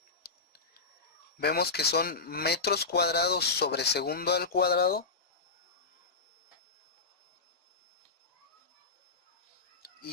Vemos que son metros cuadrados sobre segundo al cuadrado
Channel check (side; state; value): right; quieter; 4.1 dB